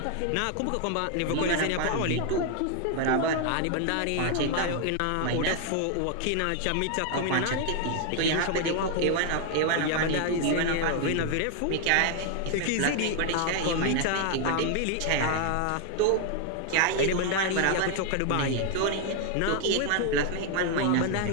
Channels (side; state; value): both; different; correlation 0.00